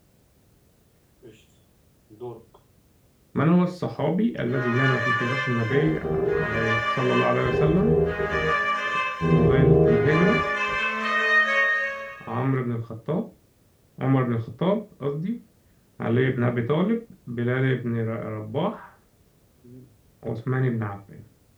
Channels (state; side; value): identical; both; correlation 1.00